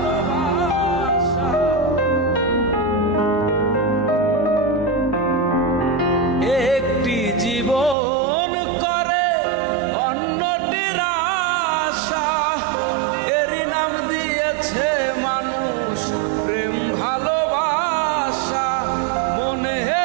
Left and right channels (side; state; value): left; drops out; at 8.0 s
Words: একটি জীবন করে অন্যটির আশা, এরই নাম দিয়েছে মানুষ প্রেম ভালোবাসা।